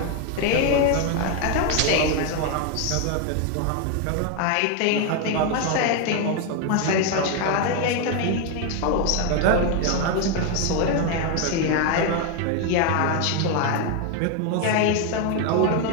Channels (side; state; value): both; different; correlation 0.01